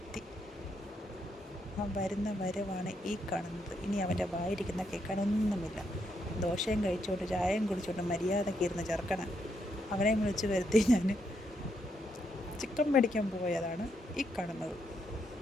എത്തി. ആ വരുന്ന വരവാണ് ഈ കാണുന്നത്. ഇനി അവൻ്റെ വായിരിക്കുന്ന കേൾക്കാനൊന്നുമില്ല. ദോശയും കഴിച്ചുകൊണ്ട് ചായയും കുടിച്ചുകൊണ്ട് മര്യാദയ്ക്ക് ഇരുന്ന് ചെറുക്കണം. അവനെ വിളിച്ച് വരുത്തി ഞാൻ ചിക്കൻ മേടിക്കാൻ പോയതാണ് ഈ കാണുന്നത്.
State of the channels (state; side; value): normal; both; correlation 0.78